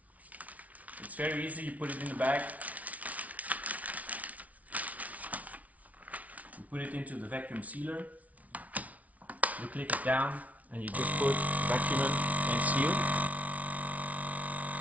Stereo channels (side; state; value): left; late; 0.070 ms